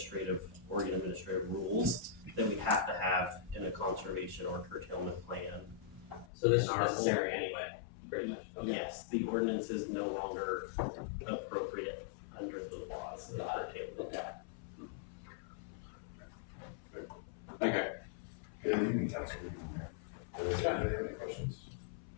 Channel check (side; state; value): right; drops out; at 6.2 s